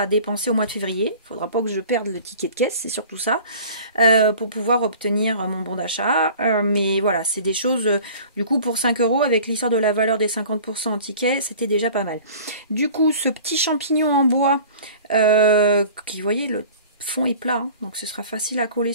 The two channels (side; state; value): both; inverted; correlation -0.45